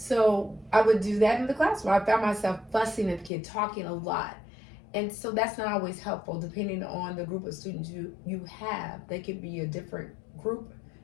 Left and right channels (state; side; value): drops out; right; at 3.3 s